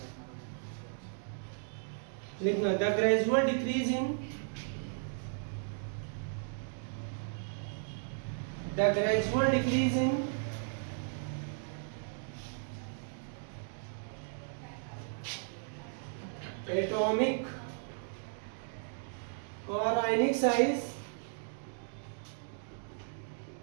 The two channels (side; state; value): left; silent; digital silence